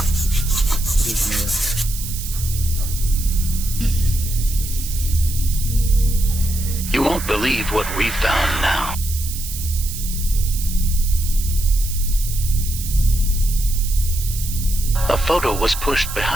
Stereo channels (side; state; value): right; noise; hiss, 9 dB below the sound